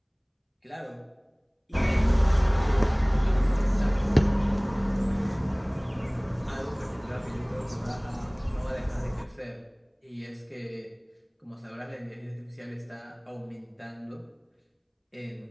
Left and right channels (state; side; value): identical; both; correlation 1.00